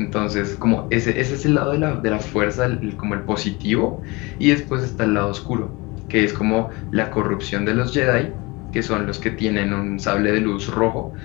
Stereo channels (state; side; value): quieter; right; 24.8 dB